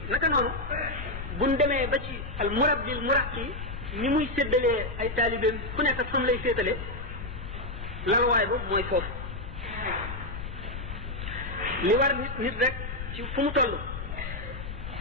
naka noonu buñ demee ba ci al murabbil muraqi ni muy séddalee ay taalibeem ku nekk ak fam lay féetale lalwaay ba mooy foofu li war nit rek ci fu mu toll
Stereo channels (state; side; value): noise; left; rumble, 8 dB below the sound